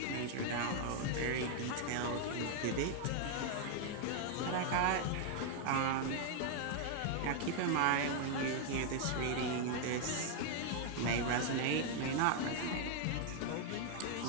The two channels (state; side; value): different; both; correlation 0.00